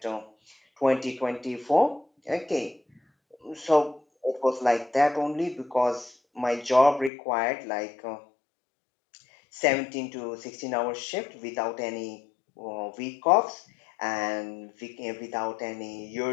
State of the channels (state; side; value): drops out; right; at 7.1 s